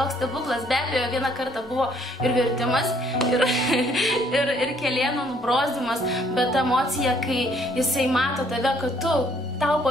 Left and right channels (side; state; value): both; normal; correlation 0.64